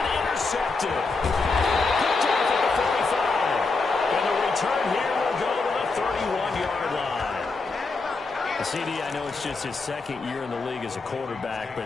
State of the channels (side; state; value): right; quieter; 3.9 dB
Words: intercepted. Picked off at the 45. And the return here will go to the 31-yard line. just his second year in the league as a quarterback,